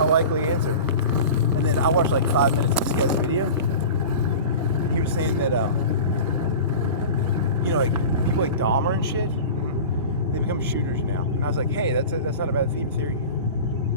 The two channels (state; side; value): inverted; both; correlation -0.34